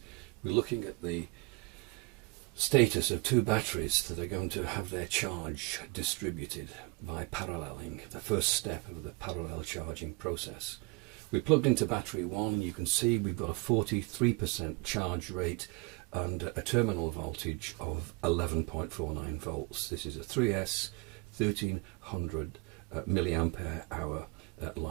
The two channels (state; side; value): quieter; left; 27.3 dB